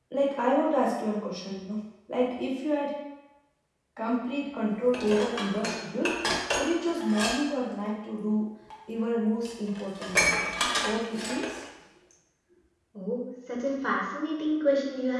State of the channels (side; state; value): both; identical; correlation 1.00